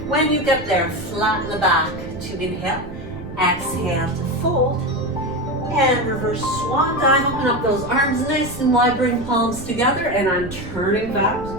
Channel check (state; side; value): noise; right; rumble, 13 dB below the sound